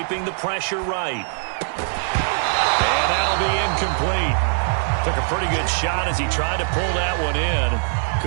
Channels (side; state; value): left; silent; 62 dB below the other